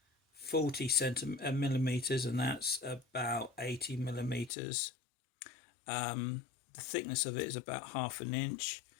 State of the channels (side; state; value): right; drops out; at 4.5 s